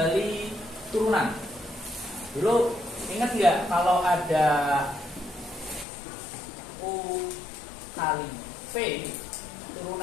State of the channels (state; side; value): drops out; right; at 5.9 s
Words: turunan. Dulu ingat nggak kalau ada u kali v,